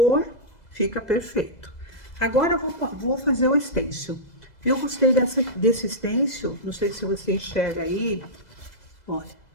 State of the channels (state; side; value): late; right; 2.0 ms